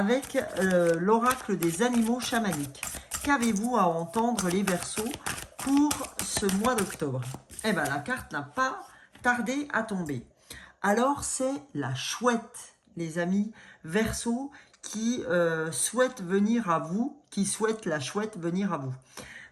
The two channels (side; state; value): both; identical; correlation 1.00